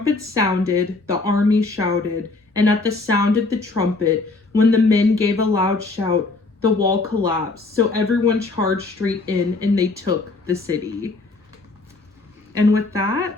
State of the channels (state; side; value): quieter; right; 3.5 dB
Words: sounded, the army shouted, and at the sound of the trumpet, when the men gave a loud shout, the wall collapsed, so everyone charged straight in, and they took the city. And with